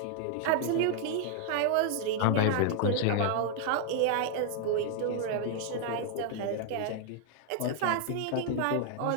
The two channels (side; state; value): both; different; correlation 0.00